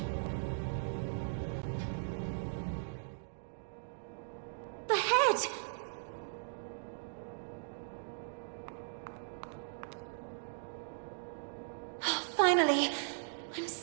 The head! Oh, finally! I'm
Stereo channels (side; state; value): left; silent; digital silence